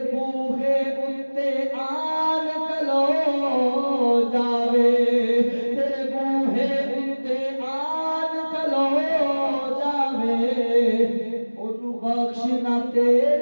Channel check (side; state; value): both; inverted; correlation -1.00